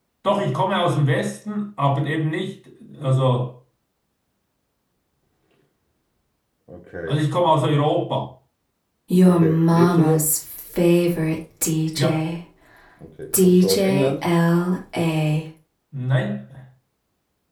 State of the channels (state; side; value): identical; both; correlation 1.00